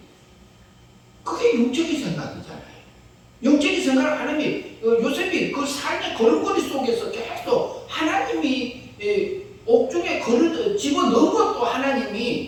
그게 영적인 생각이잖아요. 영적인 생각을 하나님이 요셉이 그 삶의 걸음걸이 속에서 계속 하나님이 옥중에 집어넣은 것도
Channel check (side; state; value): both; identical; correlation 1.00